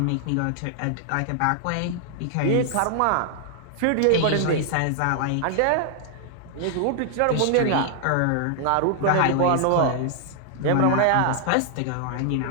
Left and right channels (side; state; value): both; different; correlation 0.00